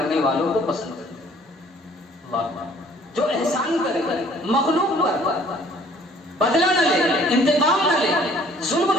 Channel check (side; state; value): both; normal; correlation 0.56